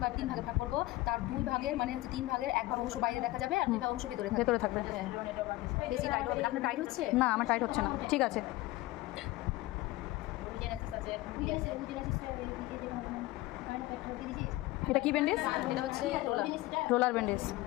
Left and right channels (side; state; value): right; quieter; 18.6 dB